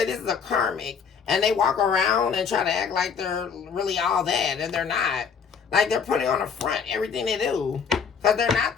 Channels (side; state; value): right; quieter; 6.4 dB